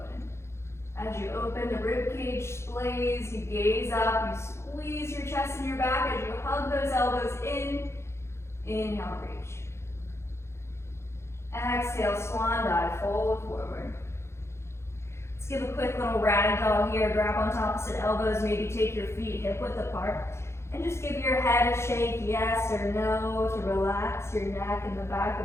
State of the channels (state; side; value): late; right; 0.13 ms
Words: As you open, the rib cage splays, you gaze up, you squeeze your chest and your back as you hug those elbows in. Inhale, reach. Exhale, swan dive, fold forward. Let's give a quick little ragdoll here. Grab onto opposite elbows, maybe take your feet hip width apart. And just give your head get a shake, yes or no, to relax your neck and the back